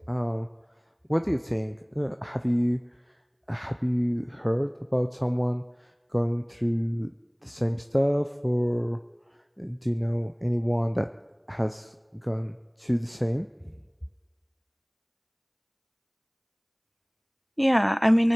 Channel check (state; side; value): identical; both; correlation 1.00